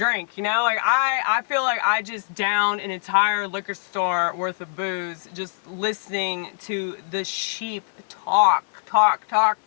you know? Like, I feel like I just downed an entire liquor store worth of booze just listening to the sheep talk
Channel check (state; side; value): silent; right; digital silence